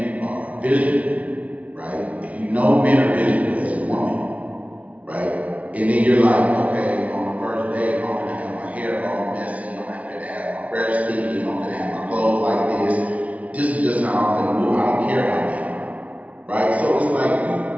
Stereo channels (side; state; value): left; late; 0.067 ms